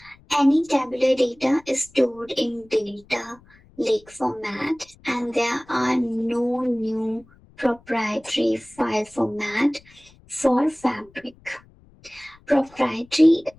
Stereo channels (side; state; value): left; noise; rumble, 28 dB below the sound